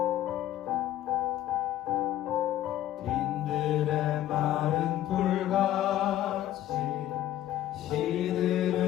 빈들의 마른 돌같이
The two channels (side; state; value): right; quieter; 12.9 dB